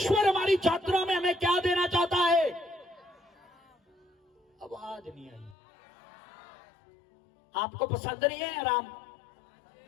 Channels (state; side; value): drops out; right; at 5.6 s